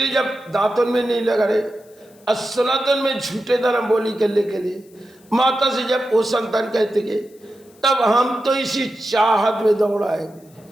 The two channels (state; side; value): noise; left; hiss, 30 dB below the sound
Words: ने जब दांतों में नहीं लगा रहे, सनातन में झूठे धर्म बोली करने के लिए माता से जब वो संतान कहते गए, तब हम तो इसी चाहत में दौड़ाएंगे।